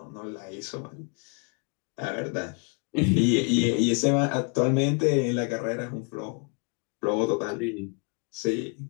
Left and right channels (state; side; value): quieter; right; 35.4 dB